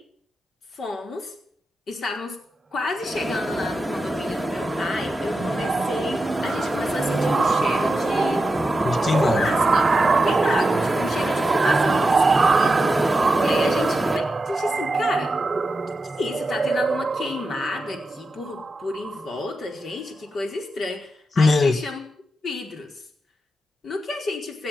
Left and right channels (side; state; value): both; normal; correlation 0.89